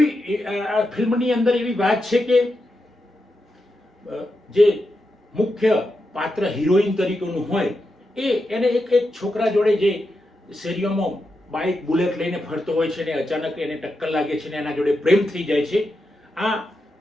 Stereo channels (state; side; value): normal; both; correlation 0.87